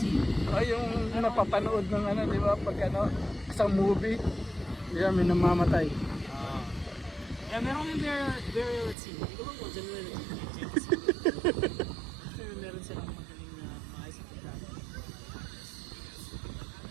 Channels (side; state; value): left; drops out; at 9.0 s